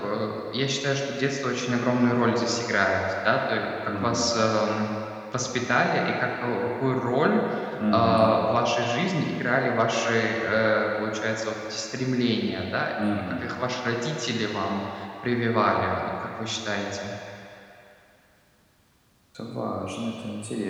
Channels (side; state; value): both; identical; correlation 1.00